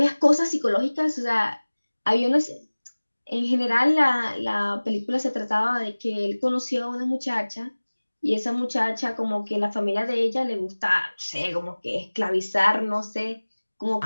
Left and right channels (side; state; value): both; inverted; correlation -1.00